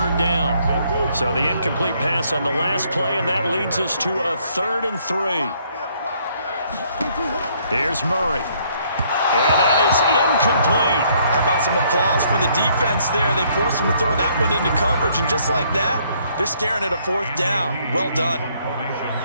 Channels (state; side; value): inverted; both; correlation -0.66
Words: down. So the incomplete pass on the last play, and that leads us to a 3rd and 3. Here's Murray. And that is incomplete. How about some applause for the defense there? They forced him to throw that one into coverage, and just like that, they're staring at a 4th down. Well done.